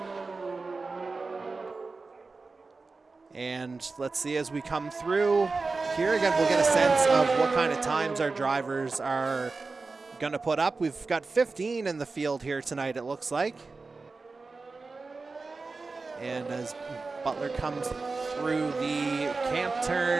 And let's see as we come through here again, we'll get a sense of what kind of times our drivers are going to put up. We've got 15 in the field here tonight, it looks like. And as Butler comes through the camp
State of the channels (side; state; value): left; quieter; 3.9 dB